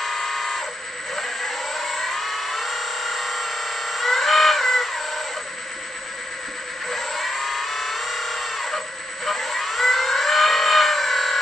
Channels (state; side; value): normal; both; correlation 0.82